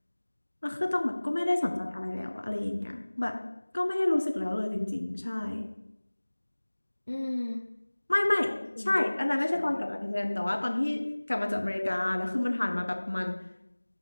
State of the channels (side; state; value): both; inverted; correlation -1.00